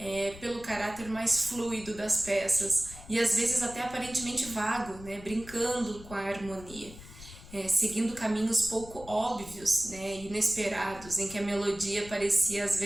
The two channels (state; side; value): noise; left; rumble, 17 dB below the sound